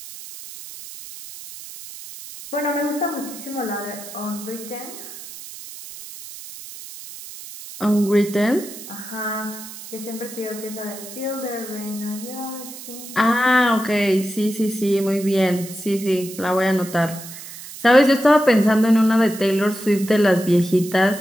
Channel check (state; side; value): noise; right; hiss, 14 dB below the sound